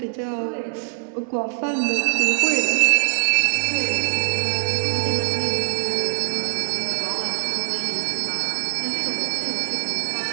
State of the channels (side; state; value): left; silent; 61 dB below the other